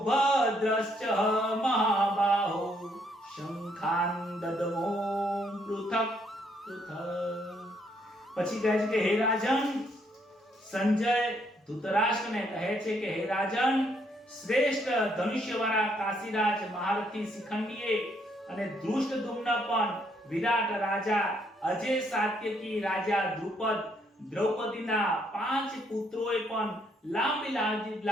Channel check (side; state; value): both; normal; correlation 0.71